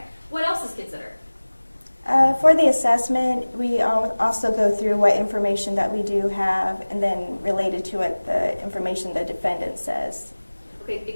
What else is considered? For the assessment, we also go through what information that we do have, and then related to it, the information the defendant says. Okay,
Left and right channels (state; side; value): inverted; both; correlation -1.00